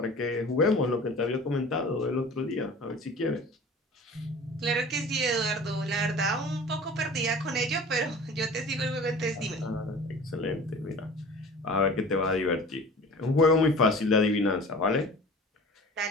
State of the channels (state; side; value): normal; both; correlation 0.41